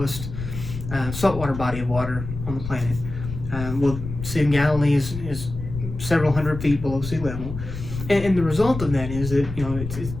saltwater body of water on the planet. Well, Sea of Galilee is several hundred feet below sea level, and the result of that is that it's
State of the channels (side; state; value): left; noise; rumble, 8 dB below the sound